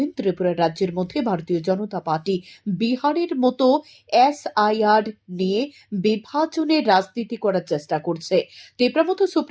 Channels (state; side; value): identical; both; correlation 1.00